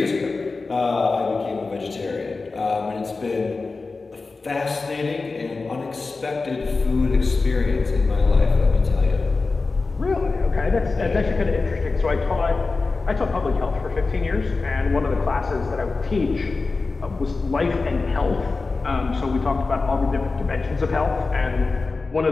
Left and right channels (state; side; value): quieter; right; 3.9 dB